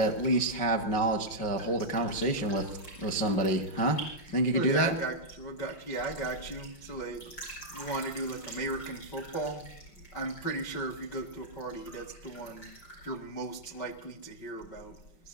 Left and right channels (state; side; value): late; right; 5.4 ms